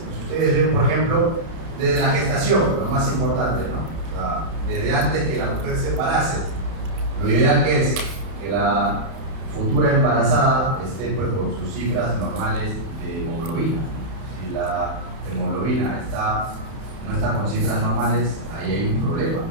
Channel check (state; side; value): late; left; 31 ms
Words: Si ustedes ven, por ejemplo, desde la gestación, lo más importante, ¿no? O sea, desde antes que la mujer se embarace, lo ideal que es que la futura embarazada esté pues con sus cifras normales de hemoglobina. Si la hemoglobina no está con cifras normales, ahí hay un problema,